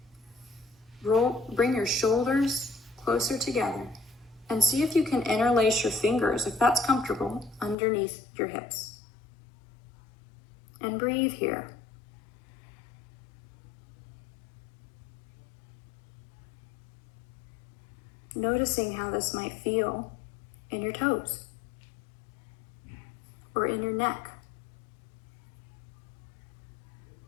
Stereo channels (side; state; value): right; drops out; at 7.8 s